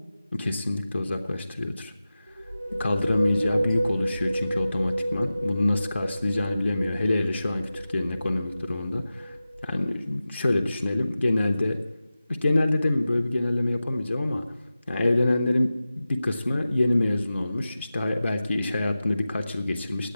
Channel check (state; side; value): inverted; both; correlation -0.95